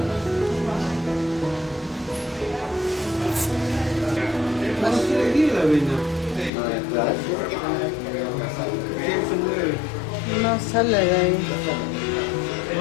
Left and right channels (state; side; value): drops out; right; at 6.5 s